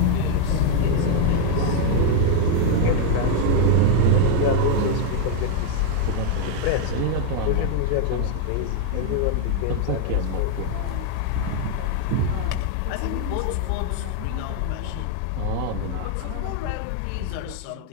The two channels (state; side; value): different; both; correlation 0.00